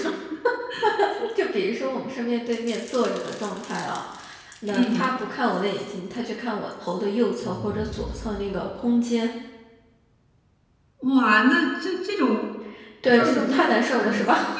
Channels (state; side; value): identical; both; correlation 1.00